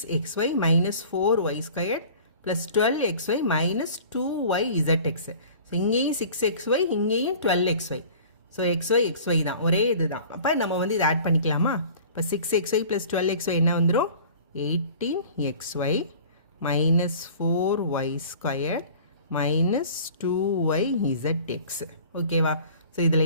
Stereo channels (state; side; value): inverted; both; correlation -0.45